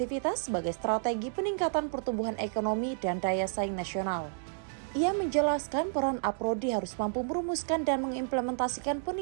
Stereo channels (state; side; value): silent; left; digital silence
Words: sebagai strategi peningkatan pertumbuhan ekonomi dan daya saing nasional. Ia menjelaskan peran Aprodi harus mampu merumuskan dan mengimplementasikan